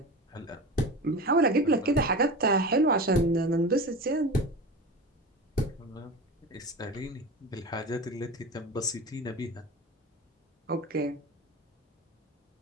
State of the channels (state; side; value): normal; both; correlation 0.30